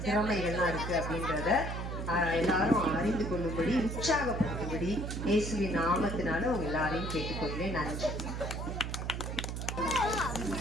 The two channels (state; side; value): noise; right; hum, 4 dB below the sound